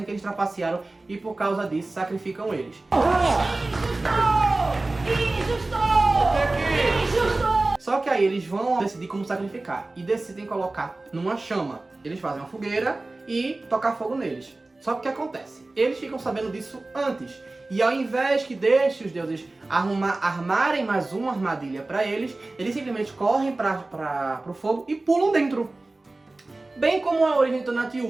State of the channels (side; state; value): left; quieter; 3.0 dB